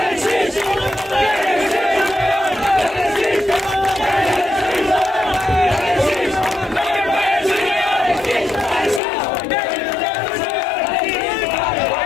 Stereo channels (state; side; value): drops out; right; at 9.0 s